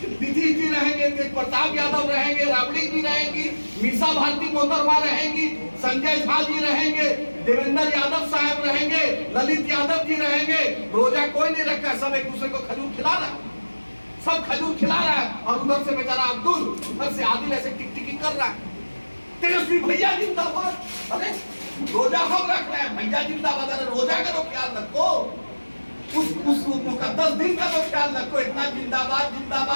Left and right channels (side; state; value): both; inverted; correlation -1.00